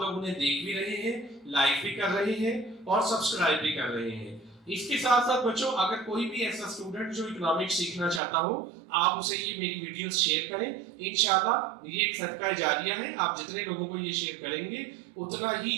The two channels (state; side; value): drops out; left; at 8.2 s